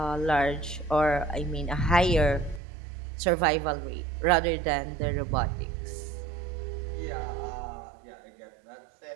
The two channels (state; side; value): drops out; left; at 2.6 s